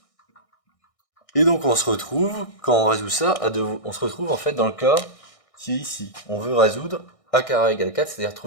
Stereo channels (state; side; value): late; right; 1.6 ms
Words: Et donc on se retrouve, quand on résout ça, on se retrouve en fait dans le cas qui est ici. On veut résoudre a carré égale 4, c'est-à-dire